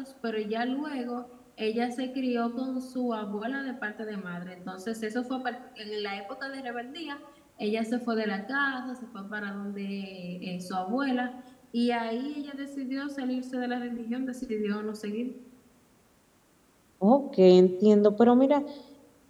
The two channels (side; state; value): both; identical; correlation 1.00